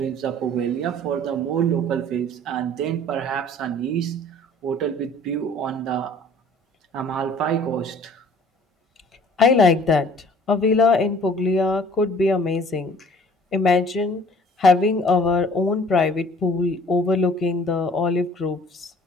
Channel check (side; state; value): both; normal; correlation 0.52